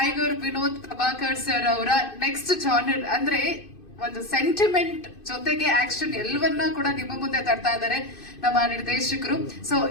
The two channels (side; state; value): right; late; 2.5 ms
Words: ವಿನೋದ್ ಪ್ರಭಾಕರ್ ಸರ್ ಅವರ ನೆಕ್ಸ್ಟ್ ಜಾನರ್ ಅಂದ್ರೆ ಒಂದು ಸೆಂಟಿಮೆಂಟ್ ಜೊತೆಗೆ ಆಕ್ಷನ್ ಎಲ್ಲವನ್ನ ಕೂಡ ನಿಮ್ಮ ಮುಂದೆ ತರ್ತಾ ಇದ್ದಾರೆ ನಮ್ಮ ನಿರ್ದೇಶಕರು. ಸೊ